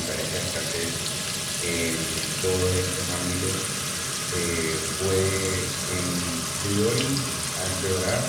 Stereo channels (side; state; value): both; identical; correlation 1.00